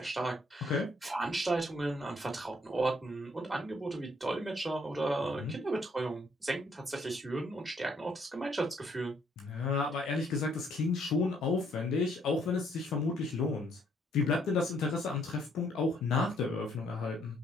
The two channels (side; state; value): both; normal; correlation 0.68